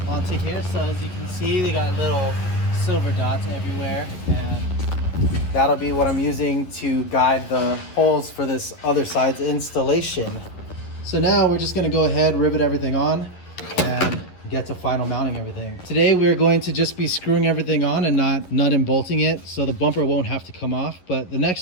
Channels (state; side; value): late; right; 11 ms